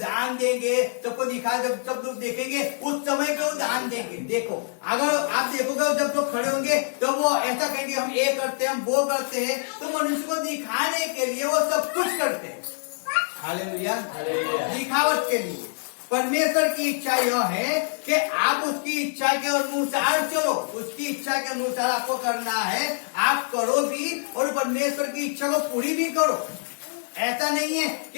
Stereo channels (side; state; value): right; silent; 62 dB below the other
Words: देंगे, सबको दिखा, जब सब लोग देखेंगे उस समय पे वो दान देंगे। देखो अगर आप देखोगे जब लोग खड़े होंगे तो वो ऐसा कहेंगे हम ये करते हैं, हम वो करते हैं, तो मनुष्य को दिखाने के लिए वो सब कुछ करते हैं। हालेलुया, दिखावट के लिए। परमेश्वर की इच्छा यह है कि आप उसकी इच्छा के अनुसार चलो, उसकी इच्छा के अनुसार आपको करना है, आप करो भी और परमेश्वर की इच्छा को पूरी भी करो। ऐसा नहीं है